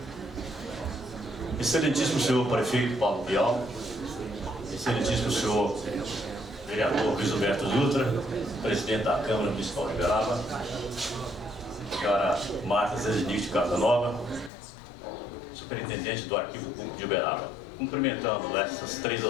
Excelentíssimo senhor prefeito Paulo Bial, excelentíssimo senhor vereador Luiz Alberto Dutra, presidente da Câmara Municipal de Uberaba, senhora Marta Zezinich Casanova, superintendente do Arquivo Público de Uberaba. Cumprimentando essas três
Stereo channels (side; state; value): right; drops out; at 14.5 s